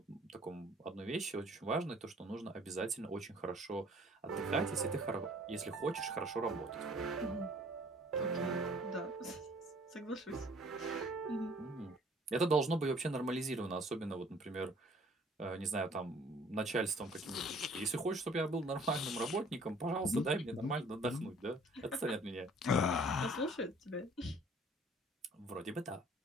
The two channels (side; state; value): both; normal; correlation 0.55